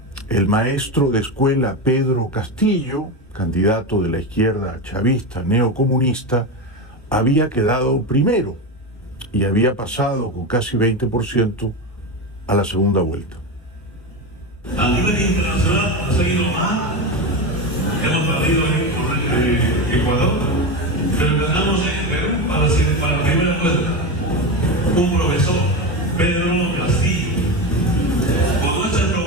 el maestro de escuela Pedro Castillo, candidato de la izquierda chavista neocomunista, había quedado primero y había pasado con casi 20% a la segunda vuelta. A nivel internacional ha seguido mal, hemos perdido en Ecuador, pero ganamos en Perú para la primera vuelta. Un profesor, Pedro Castillo, con nuestra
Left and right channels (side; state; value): both; normal; correlation 0.18